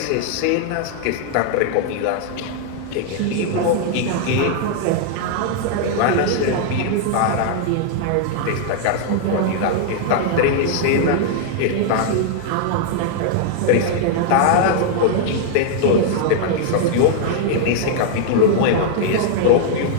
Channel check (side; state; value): both; different; correlation -0.01